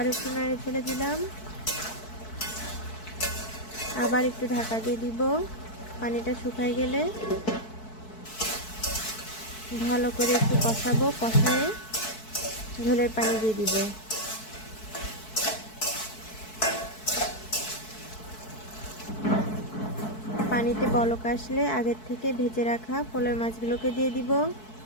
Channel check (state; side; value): late; right; 4.6 ms